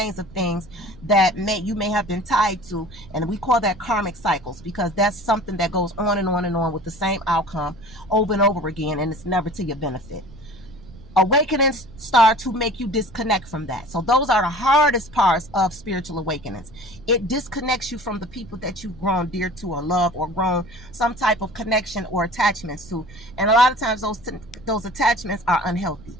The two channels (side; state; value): right; noise; rumble, 20 dB below the sound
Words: of things that you may have been tied to. And we call that karmic cycles, because that's something that goes on and on and on with the same outcome over and over again, and it's never to your benefit. Awakenings start to make you disconnect from that. So those are the hardest parts of spiritual awakenings. It disconnects you from the people that you've grown dear to or love or grown some type of connection or attachments to. And a lot of times those attachments are unhealthy